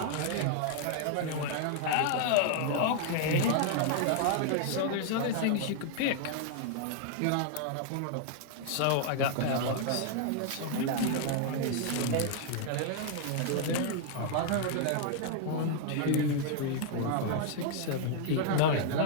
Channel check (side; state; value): both; different; correlation 0.00